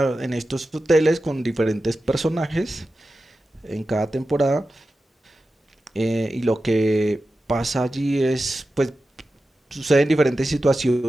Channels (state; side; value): normal; both; correlation 0.93